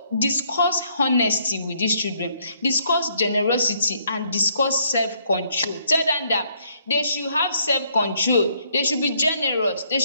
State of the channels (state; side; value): inverted; both; correlation -0.68